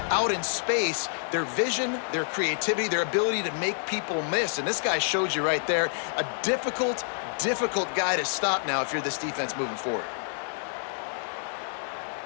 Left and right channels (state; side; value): silent; right; digital silence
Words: out in space. Their vision, their creativity, their ability to make people miss. And this guy showed you right there, a difficult guy to stop now if you're this defense moving forward.